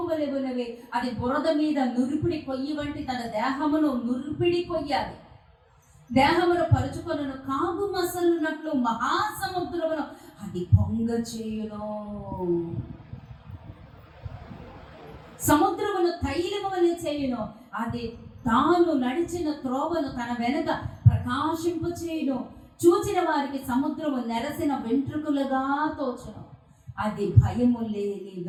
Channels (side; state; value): both; identical; correlation 1.00